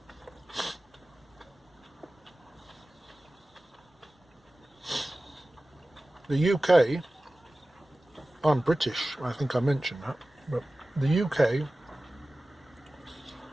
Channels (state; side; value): normal; both; correlation 0.96